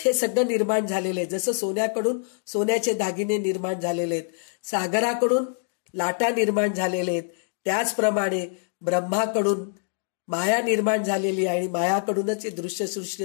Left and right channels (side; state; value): right; silent; digital silence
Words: हे सगळं निर्माण झालेलं आहे. जसं सोन्याकडून सोन्याचे दागिने निर्माण झालेले आहेत, सागराकडून लाटा निर्माण झालेले आहेत, त्याचप्रमाणे ब्रह्माकडून माया निर्माण झालेली आहे आणि मायाकडूनच हे दृश्यसृष्टी